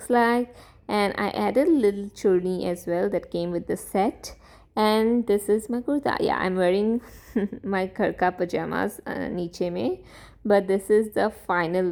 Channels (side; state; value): both; identical; correlation 1.00